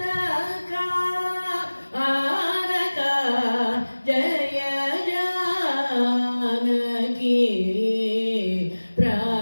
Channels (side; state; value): both; inverted; correlation -1.00